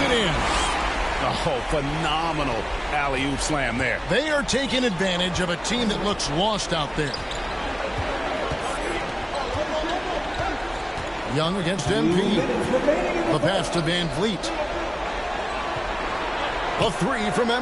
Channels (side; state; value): both; identical; correlation 1.00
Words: in. Oh, phenomenal alley-oop slam there. They are taking advantage of a team that looks lost out there. Young against MP. The pass to VanVleet. A 3 from